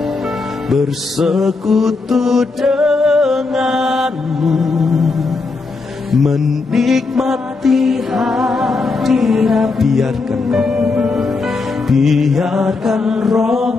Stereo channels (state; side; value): quieter; right; 3.9 dB